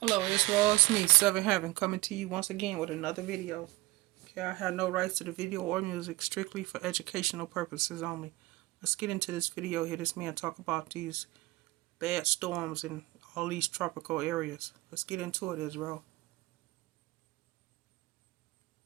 Hello, it's Ross me, Seven Heaven, coming to you once again with another video. Okay, I have no rights to the video or music, strictly for educational purposes only. Let's get into this video. Hear this man talk about these bad storms in all these tropical areas. Let's get into it, Israel.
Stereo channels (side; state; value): left; quieter; 20.6 dB